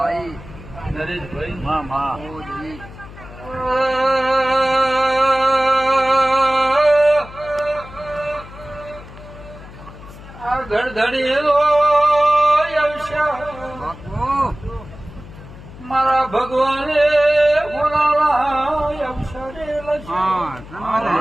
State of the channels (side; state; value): left; noise; hum, 17 dB below the sound